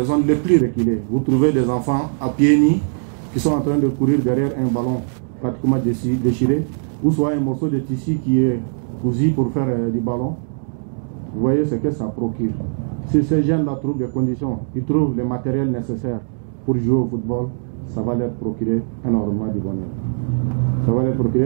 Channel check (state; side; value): silent; left; digital silence